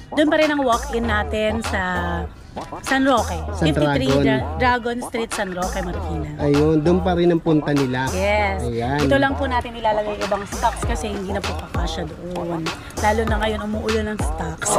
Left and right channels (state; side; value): identical; both; correlation 1.00